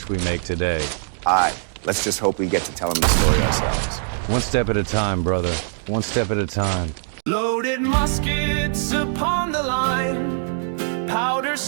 we make today. Aye, let's just hope we get to tell them the story ourselves. One step at a time, brother. One step at a time. Loaded muskets upon the line, powder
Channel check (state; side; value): silent; left; digital silence